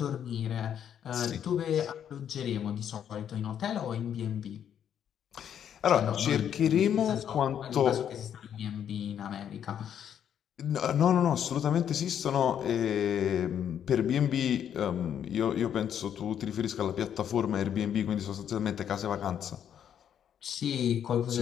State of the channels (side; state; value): right; quieter; 9.2 dB